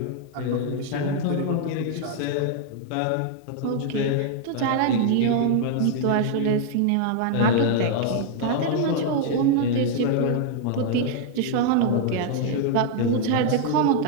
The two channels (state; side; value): different; both; correlation 0.00